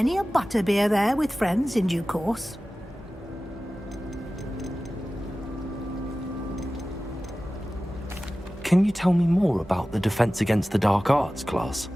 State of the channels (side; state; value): both; normal; correlation 0.96